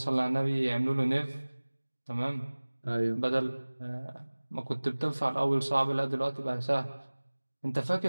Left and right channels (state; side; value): inverted; both; correlation -1.00